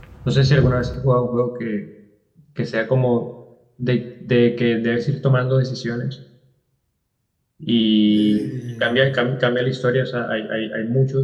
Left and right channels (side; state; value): both; identical; correlation 1.00